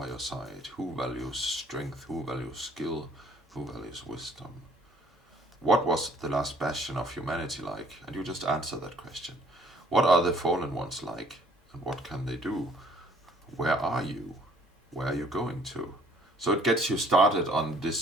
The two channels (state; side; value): normal; both; correlation 0.60